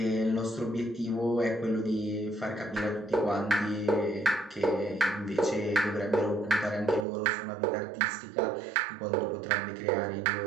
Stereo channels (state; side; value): drops out; left; at 7.1 s